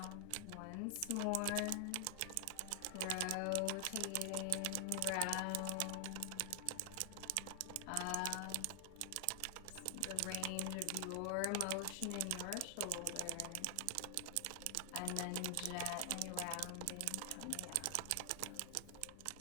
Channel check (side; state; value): both; different; correlation 0.00